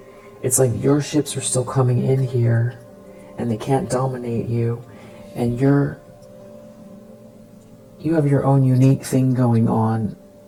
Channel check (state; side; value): identical; both; correlation 1.00